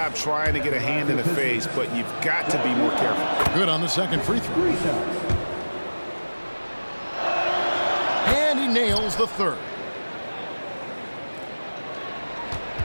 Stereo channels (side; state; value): both; inverted; correlation -1.00